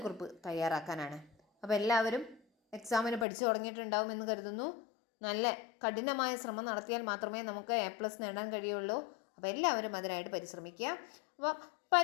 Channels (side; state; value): right; drops out; at 3.2 s